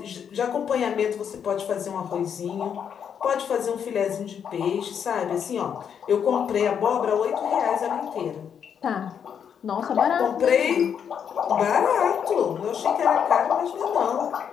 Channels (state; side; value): quieter; right; 7.9 dB